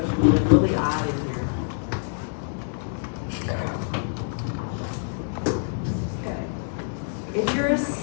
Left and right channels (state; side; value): silent; right; 61 dB below the other